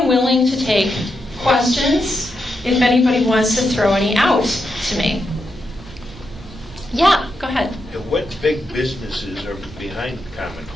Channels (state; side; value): normal; both; correlation 0.85